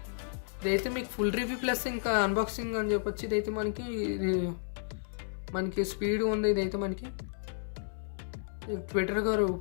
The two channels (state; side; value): silent; right; 56 dB below the other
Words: మీకు ఫుల్ రివ్యూ ప్లస్ ఇంకా అన్బాక్సింగ్ అని చెప్పొచ్చు. ఇదైతే మనకి స్పీడ్ ఉంది. ఇదైతే మనకి ట్విట్టర్ గారు